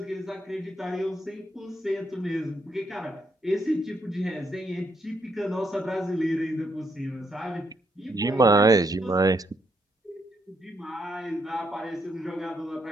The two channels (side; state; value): both; normal; correlation 0.76